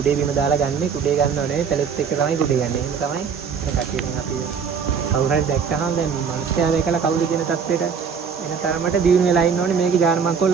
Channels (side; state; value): left; quieter; 6.4 dB